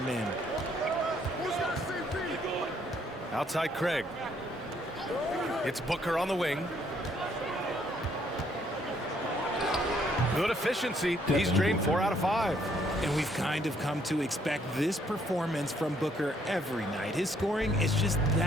in. Outside Craig. It's Booker on the wing. Good efficiency. He's drained 4 out of 5. And we've kind of come to expect this performance from Booker every night. His scoring is just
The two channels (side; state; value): both; normal; correlation 0.68